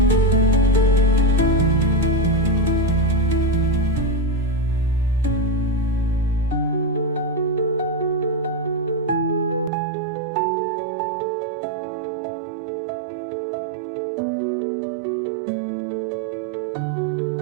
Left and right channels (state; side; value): drops out; left; at 9.7 s